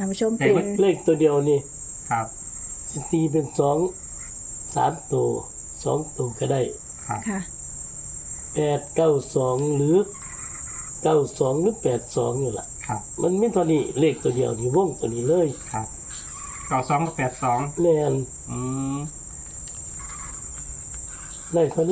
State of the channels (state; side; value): identical; both; correlation 1.00